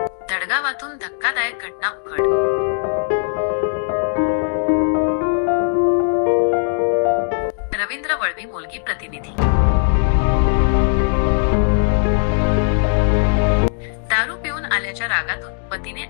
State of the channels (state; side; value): silent; right; 67 dB below the other